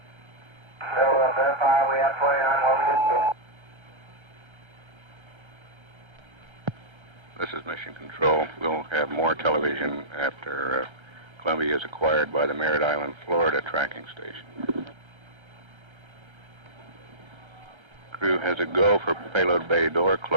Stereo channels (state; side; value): late; left; 1.3 ms